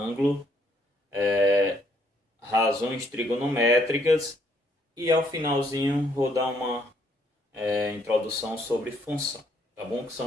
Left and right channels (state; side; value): normal; both; correlation 0.69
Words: razões trigonométricas e ao finalzinho vou dar uma introdução sobre função, tá bom? Que